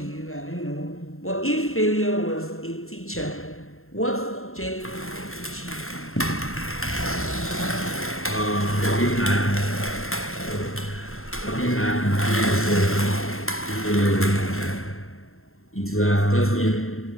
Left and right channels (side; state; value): right; late; 0.61 ms